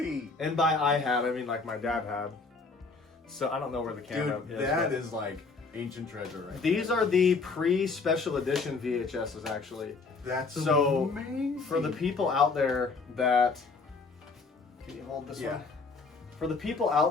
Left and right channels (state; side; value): quieter; right; 4.3 dB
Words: And by I had, I mean like my dad had. So I don't know where the camera Dude, is. that is like ancient treasure right These are the pre-special edition VHSs actually. That's so amazing. For the people out there that can you hold this Yeah. one? For the people